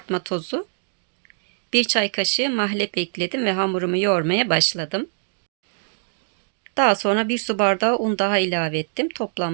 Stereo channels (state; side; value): silent; left; 63 dB below the other